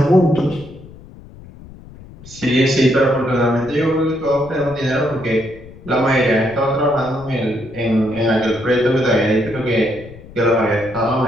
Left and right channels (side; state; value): left; noise; rumble, 19 dB below the sound